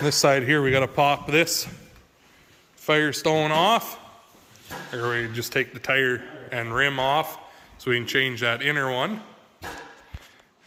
side here, we got to pop this Firestone off. Or we just take the tire and rim off so we can change that inner one.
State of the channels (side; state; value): both; identical; correlation 1.00